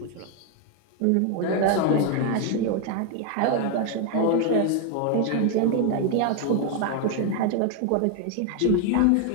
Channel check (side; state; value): both; different; correlation 0.01